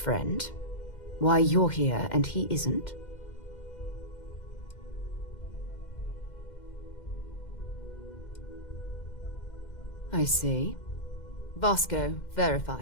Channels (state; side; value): late; right; 2.1 ms